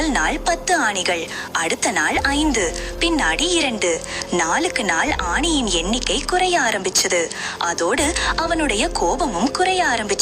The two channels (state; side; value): identical; both; correlation 1.00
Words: நாள் 10 ஆணிகள், அடுத்த நாள் 5, பின்னாடி 2. நாளுக்கு நாள் ஆணியின் எண்ணிக்கை குறைய ஆரம்பிச்சது. அதோடு அவனுடைய கோபமும் குறைய